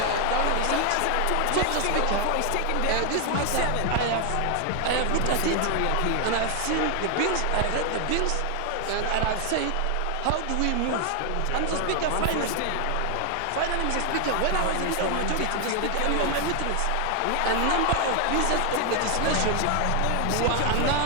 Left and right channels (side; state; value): both; different; correlation 0.00